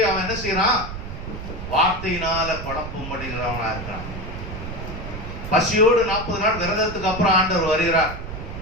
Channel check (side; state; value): right; noise; rumble, 8 dB below the sound